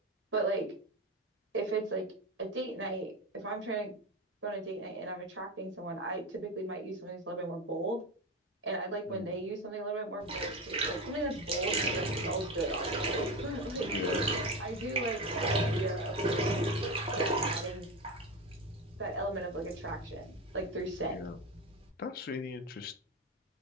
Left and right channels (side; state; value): both; normal; correlation 0.21